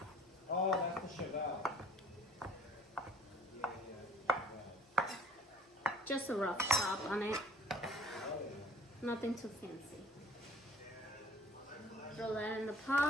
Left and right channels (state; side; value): normal; both; correlation 0.53